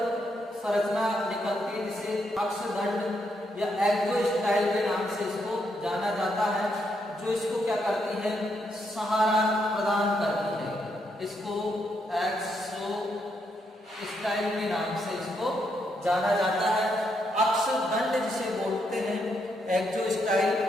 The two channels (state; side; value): normal; both; correlation 0.78